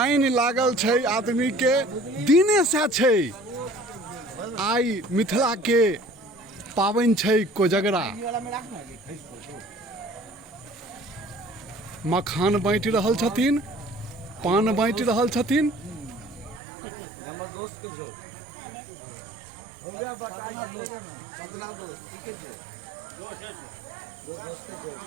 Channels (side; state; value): left; drops out; at 16.6 s